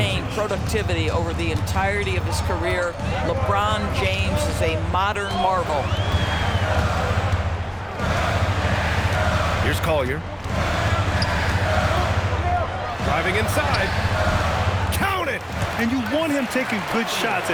productivity over the entirety of his career. LeBron James is a modern marvel. Here's Collier. Driving inside. Count it! And you want him taking good shots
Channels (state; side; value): identical; both; correlation 1.00